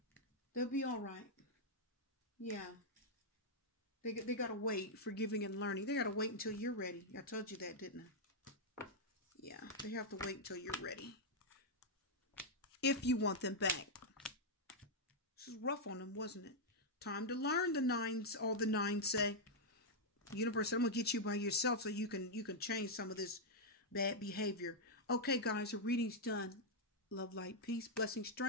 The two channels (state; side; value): normal; both; correlation -0.04